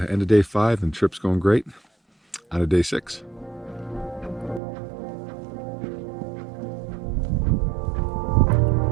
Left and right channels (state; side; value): drops out; left; at 4.6 s